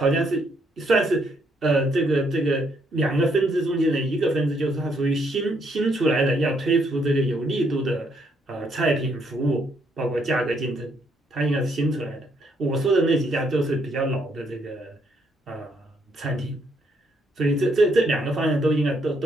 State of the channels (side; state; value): both; normal; correlation 0.72